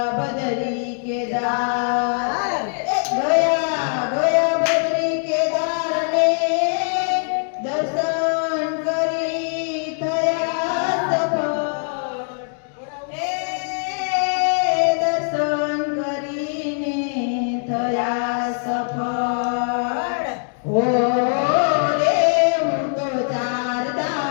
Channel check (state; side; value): silent; right; 56 dB below the other